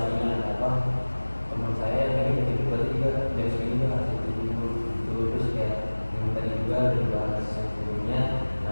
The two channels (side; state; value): both; inverted; correlation -1.00